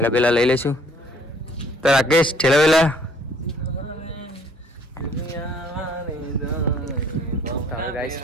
બેલા લઈ લઈશું. તો રાકેશ ઠેલા બેલા ગાઈસ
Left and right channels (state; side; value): normal; both; correlation 0.60